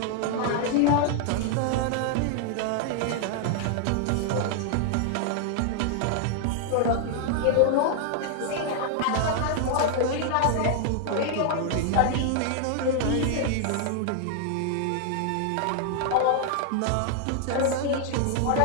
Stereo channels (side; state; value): both; different; correlation 0.00